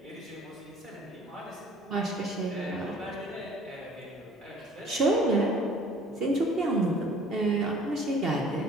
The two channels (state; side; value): normal; both; correlation 0.52